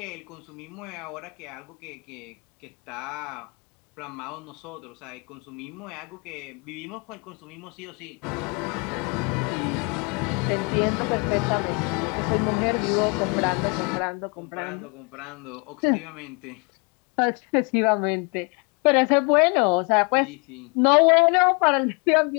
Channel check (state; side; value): quieter; right; 33.2 dB